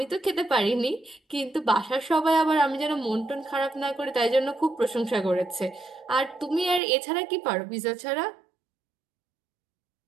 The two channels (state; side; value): drops out; left; at 6.8 s